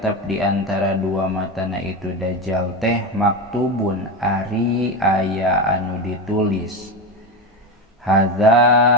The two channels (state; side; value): normal; both; correlation 0.17